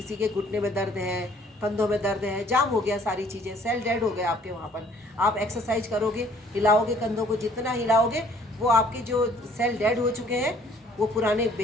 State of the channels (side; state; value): both; normal; correlation 0.58